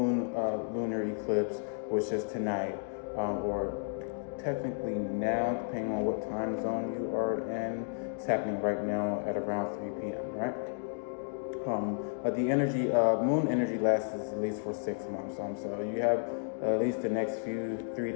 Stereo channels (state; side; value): silent; right; digital silence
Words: lunar eclipse, which is tonight, or technically now, depending on what time zone you are in. It's happening right now at around 3 p.m., right? But the moon energy lasts at least for 6 months. So you have at least the next 3